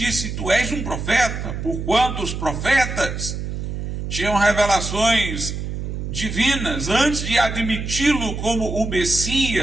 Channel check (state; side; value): noise; right; hum, 5 dB below the sound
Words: tu és um profeta, porquanto os profetas tinham revelações divinas. Antes de admiti-lo como o